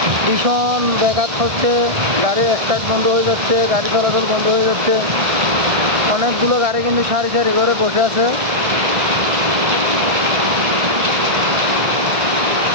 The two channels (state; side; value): late; left; 1.6 ms